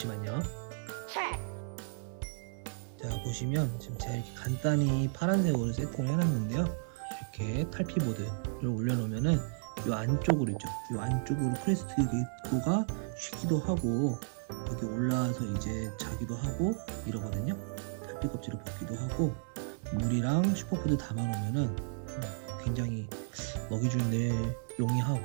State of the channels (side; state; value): left; silent; 55 dB below the other